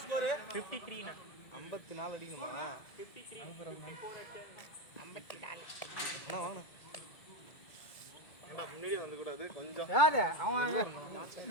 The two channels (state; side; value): late; right; 2.2 ms